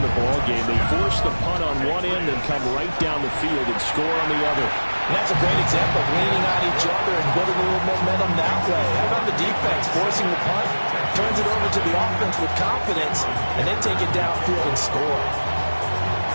the ball game. They force the punt on one end and come right down the field and score on the other. And that's a great example of leaning on each other and building a little momentum that way. How about the defense forcing the punt, turns it over to the offense with confidence, and then take it downfield and score.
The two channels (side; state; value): both; inverted; correlation -1.00